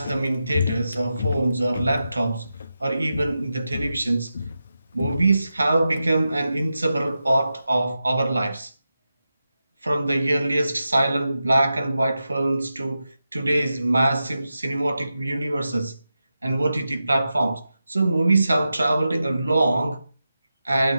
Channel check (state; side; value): inverted; both; correlation -0.91